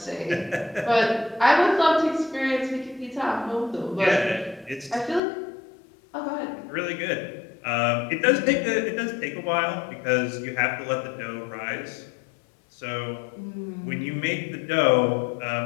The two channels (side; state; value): right; drops out; at 5.2 s